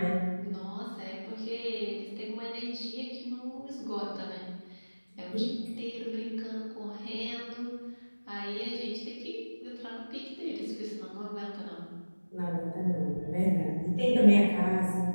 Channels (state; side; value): inverted; both; correlation -1.00